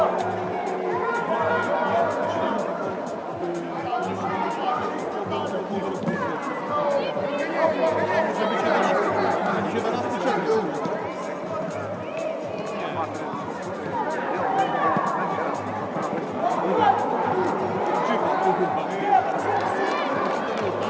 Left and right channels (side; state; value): both; identical; correlation 1.00